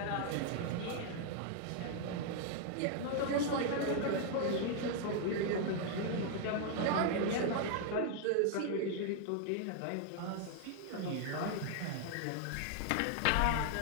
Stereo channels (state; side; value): different; both; correlation 0.00